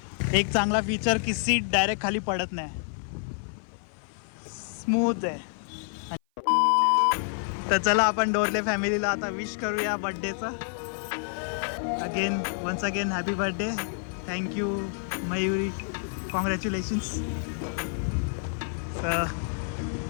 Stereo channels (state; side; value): silent; right; 55 dB below the other